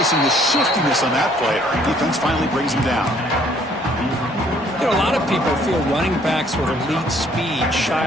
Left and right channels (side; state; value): both; normal; correlation 0.62